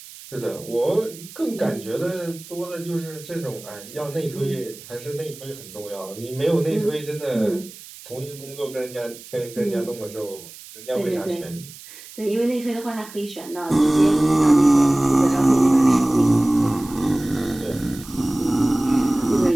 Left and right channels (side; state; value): right; noise; hiss, 17 dB below the sound